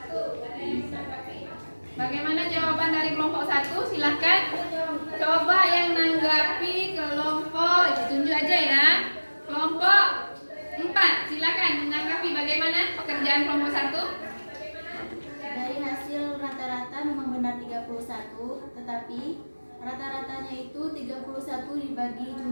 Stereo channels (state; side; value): inverted; both; correlation -1.00